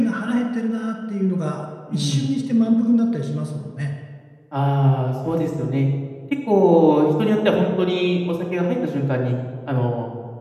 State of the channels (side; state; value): both; identical; correlation 1.00